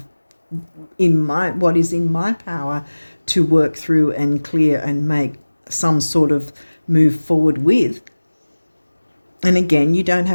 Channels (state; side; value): inverted; both; correlation -1.00